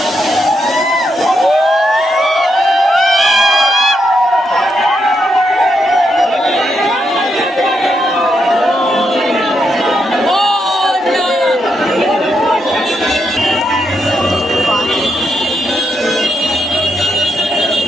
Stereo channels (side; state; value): both; normal; correlation 0.81